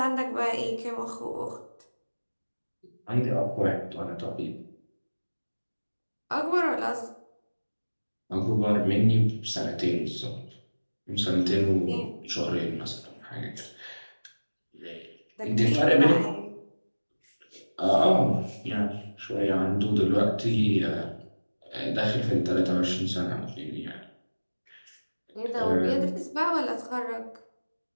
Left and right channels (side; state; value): both; inverted; correlation -1.00